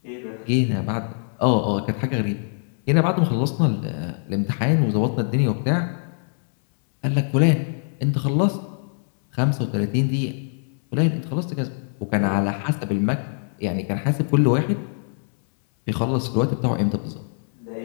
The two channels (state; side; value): silent; right; 63 dB below the other